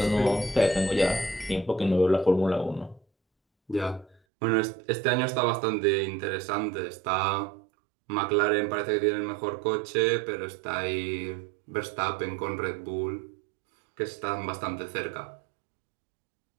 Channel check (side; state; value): left; drops out; at 4.2 s